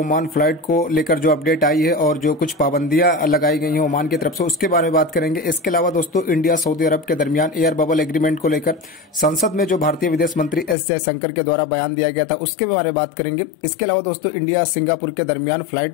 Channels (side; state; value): right; drops out; at 10.8 s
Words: फ्लाइट को लेकर जो अपडेट आई है और जो कुछ पाबंदियां लगाई गई हैं ओमान की तरफ से, उसके बारे में बात करेंगे। इसके अलावा दोस्तों इंडिया सऊदी अरब के दरमियान एयर बबल एग्रीमेंट को लेकर संसद में जो भारतीय विदेश मंत्री एस जयशंकर के द्वारा बयान दिया गया था उसके बारे में बात करेंगे। इसके अलावा दोस्तों इंडिया सिंगापुर के दरमियान